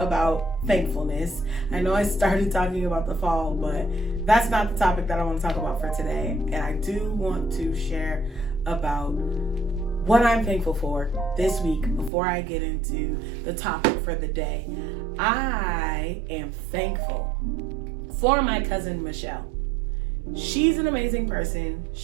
thankfulness. I know I started talking about the fall, but that's not the topic that I want to talk about for today. And I do want to share about what I'm thankful for this week before I get into the topic for the day. I am thankful for my cousin Michelle. She's an amazing person.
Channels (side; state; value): left; drops out; at 12.1 s